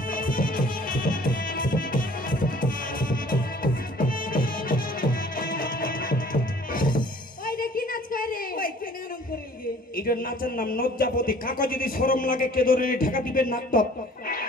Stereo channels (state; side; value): normal; both; correlation 0.52